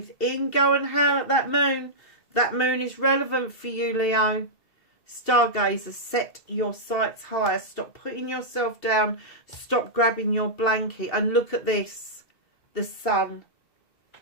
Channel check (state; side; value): late; right; 2.7 ms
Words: Go and howl at that moon. That moon is relevant for you, Leo. Stargazer, set your sights higher. Stop putting yourself down. Stop grabbing your blanket. And look at this. The sun.